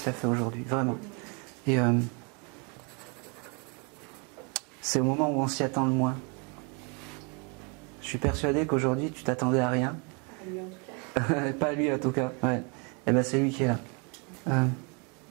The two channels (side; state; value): left; quieter; 33.6 dB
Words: t'a fait aujourd'hui, vraiment. Et c'est au moment où on s'y attend le moins. Je suis persuadé qu'aujourd'hui tu t'attendais à rien. Pas lui en tout cas. Pas lui en tout cas, ouais. Et ben c'est lui qui est là.